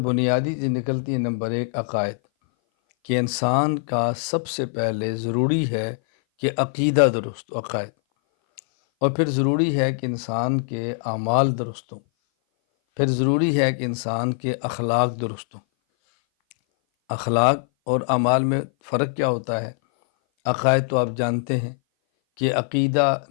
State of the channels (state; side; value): silent; right; 59 dB below the other